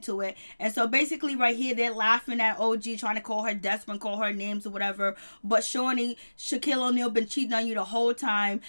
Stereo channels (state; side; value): inverted; both; correlation -1.00